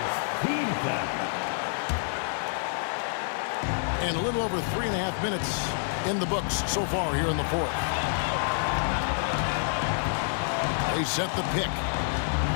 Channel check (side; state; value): right; silent; digital silence